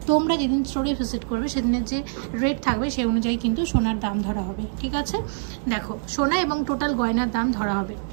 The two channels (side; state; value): left; silent; digital silence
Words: তোমরা যেদিন স্টোরে ভিজিট করবে সেদিনের যে রেট থাকবে সেই অনুযায়ী কিন্তু সোনার দাম ধরা হবে। ঠিক আছে, দেখো, সোনা এবং টোটাল গয়নার দাম ধরা হবে।